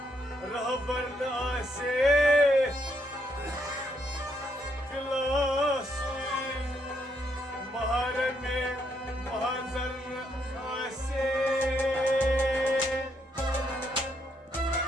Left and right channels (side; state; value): both; normal; correlation 0.75